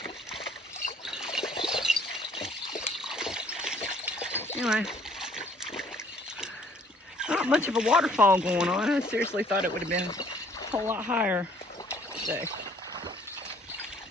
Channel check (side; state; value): both; normal; correlation 0.60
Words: Anyway, not much of a waterfall going on. I seriously thought it would have been a whole lot higher today.